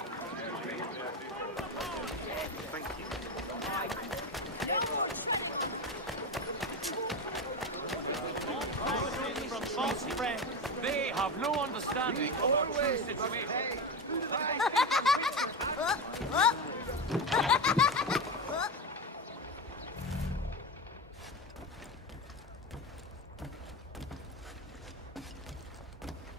From false friends, they have no understanding of our true situation.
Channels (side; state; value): both; normal; correlation 0.18